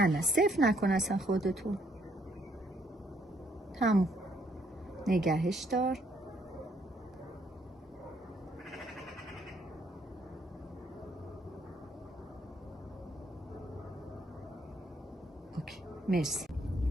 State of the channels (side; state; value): both; normal; correlation 0.69